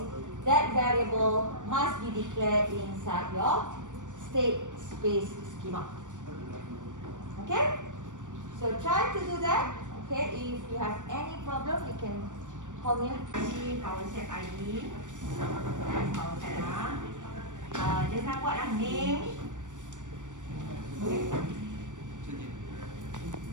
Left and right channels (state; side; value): late; left; 0.86 ms